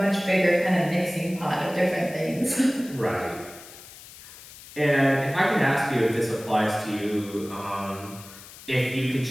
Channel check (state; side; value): noise; left; hiss, 18 dB below the sound